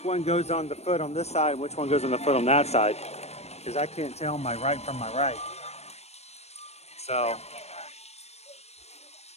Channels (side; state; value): right; late; 0.31 ms